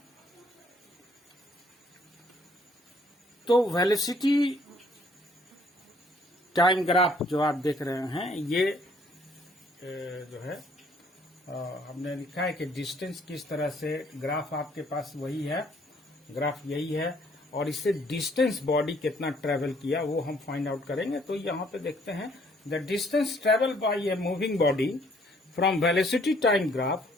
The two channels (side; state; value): both; normal; correlation 0.63